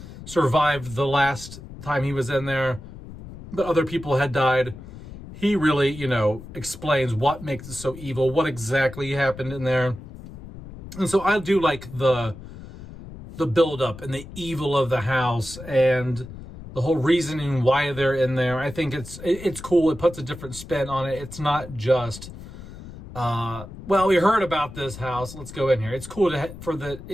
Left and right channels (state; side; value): noise; left; rumble, 14 dB below the sound